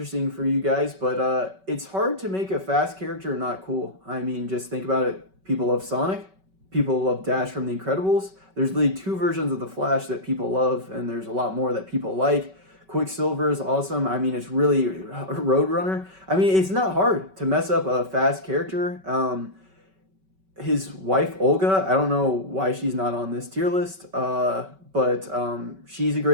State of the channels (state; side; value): late; left; 5.3 ms